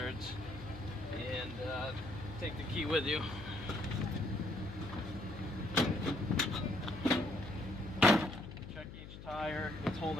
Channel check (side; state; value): left; noise; hum, 13 dB below the sound